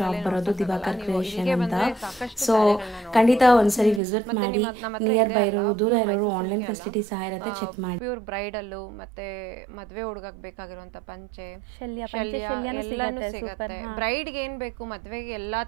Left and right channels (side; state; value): left; drops out; at 4.0 s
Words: ಬರೋದು ದಿವಾಕರ್ ಕ್ರಿಯೇಷನ್ ಅಂತ. ಸೊ ಖಂಡಿತ ಒಂದ್ಸರಿ ವಿಸಿಟ್ ಮಾಡಿ. ನಿಯರ್ ಬೈ ಇರೋರು, ದೂರ ಇರೋರು ಆನ್ಲೈನ್ ಫೆಸಿಲಿಟಿ ಸಹ ಇರುತ್ತೆ, ಚೆಕ್ ಮಾಡಿ. ಪ್ಯೂರ್ ಬ್ರೈಡಲ್ಲು ಮತ್ತೆ ಮದ್ವೆ ಹುಡುಗಕ್ಕೆ ಬೇಕಾಗಿರುವಂತ ಪಂಚೆ, ಶಲ್ಯ ಎಲ್ಲಾನು ಸಿಗುತ್ತೆ. ಬ್ರೈಡ್ಗೆ ಏನ್ ಬೇಕು ಮದ್ವೆಗೆ ಎಲ್ಲಾ